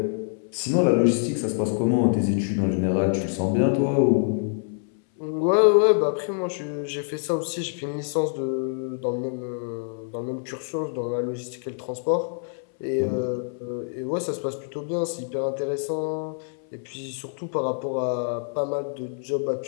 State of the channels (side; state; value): right; silent; 61 dB below the other